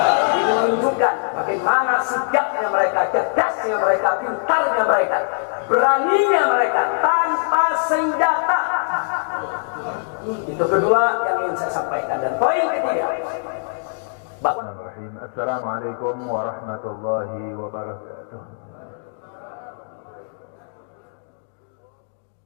Ini menunjukkan bagaimana sigapnya mereka, cerdasnya mereka, pintarnya mereka, beraninya mereka tanpa senjata. Itu kedua yang ingin saya sampaikan. Dan poin ketiga, bahwa Assalamualaikum warahmatullahi wabarakatuh.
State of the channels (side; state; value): right; silent; digital silence